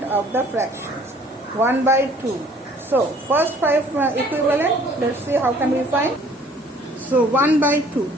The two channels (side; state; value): both; normal; correlation 0.56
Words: of the fractions. 1 by 2. So, first 5 equivalent, let's see how can we find. So, 1 by 2.